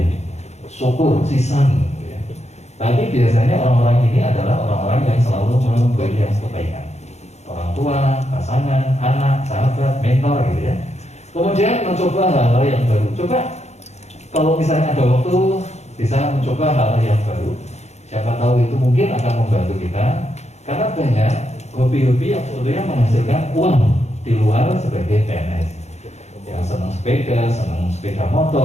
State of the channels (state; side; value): late; right; 0.32 ms